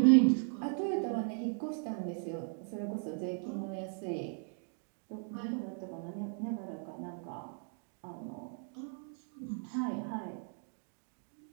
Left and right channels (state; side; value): silent; left; 53 dB below the other